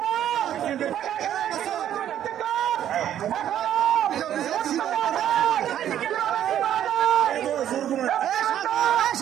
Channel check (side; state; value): left; quieter; 10.8 dB